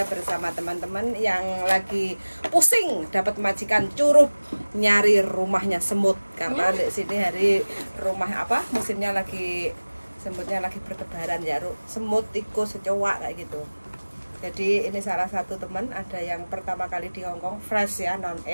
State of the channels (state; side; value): inverted; both; correlation -1.00